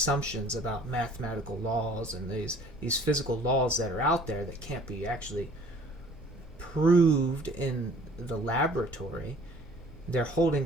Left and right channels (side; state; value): both; normal; correlation 0.53